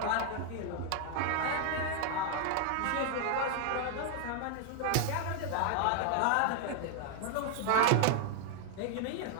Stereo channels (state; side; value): different; both; correlation 0.00